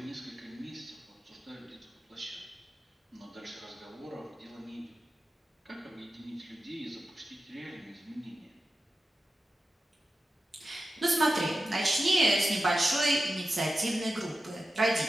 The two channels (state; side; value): normal; both; correlation 0.92